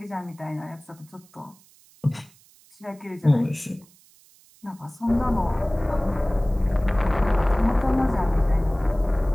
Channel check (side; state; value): right; noise; hiss, 28 dB below the sound